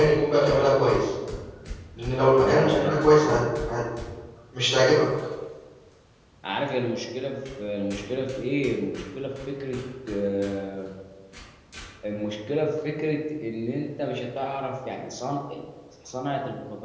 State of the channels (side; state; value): both; identical; correlation 1.00